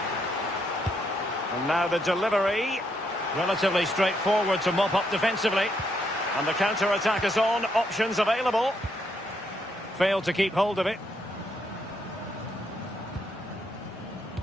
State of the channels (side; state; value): both; normal; correlation 0.76